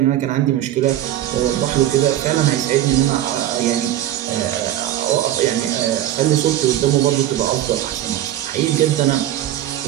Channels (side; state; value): left; quieter; 12.7 dB